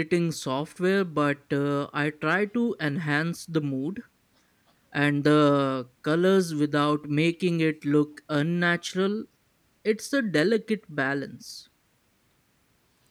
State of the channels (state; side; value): identical; both; correlation 1.00